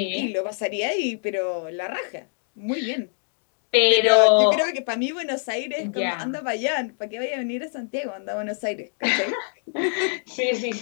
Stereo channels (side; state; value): right; silent; 62 dB below the other